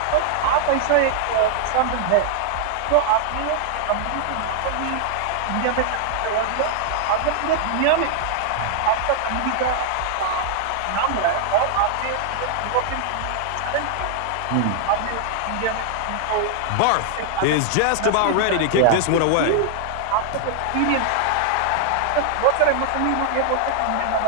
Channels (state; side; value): different; both; correlation 0.00